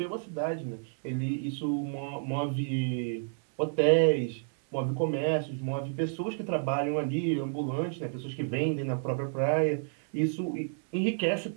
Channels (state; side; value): silent; left; digital silence